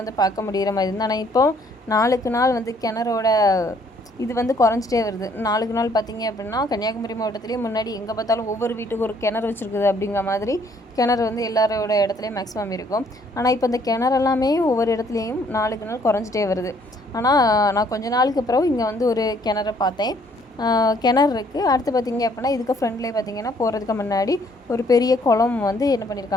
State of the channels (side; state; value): both; normal; correlation 0.64